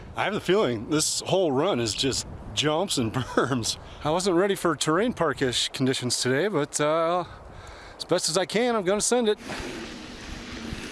I have the feeling this whole run is just jumps and berms. I wasn't ready for terrain park-ish conditions today, but as best as I can, I'm gonna send it.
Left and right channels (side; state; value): both; identical; correlation 1.00